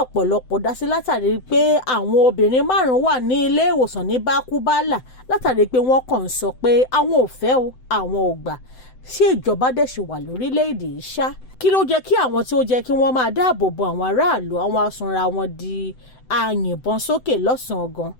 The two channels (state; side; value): late; right; 7.9 ms